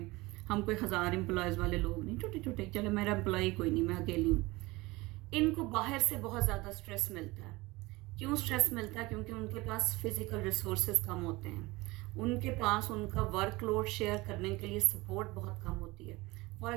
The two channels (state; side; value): quieter; left; 21.8 dB